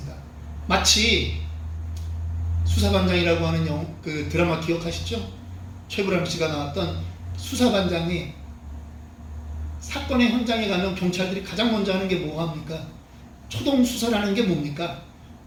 마치 수사반장이라고 하는 그 드라마 기억하시죠? 최불암 씨가 나왔던 수사반장이 사건의 현장에 가면 경찰들이 가장 먼저 하는 게 뭐합니까? 초동 수사라는 게 뭡니까?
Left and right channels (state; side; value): identical; both; correlation 1.00